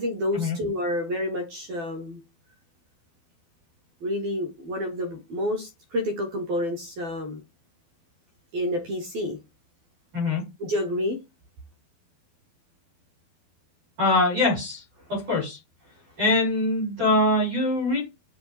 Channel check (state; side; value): late; left; 12 ms